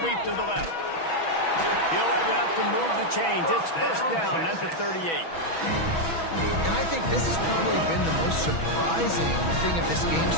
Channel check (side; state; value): right; late; 6.1 ms